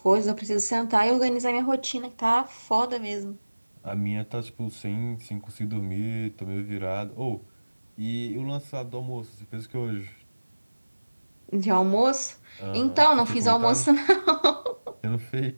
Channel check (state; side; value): inverted; both; correlation -1.00